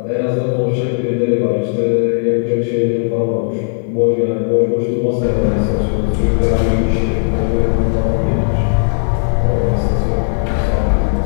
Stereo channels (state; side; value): silent; right; 69 dB below the other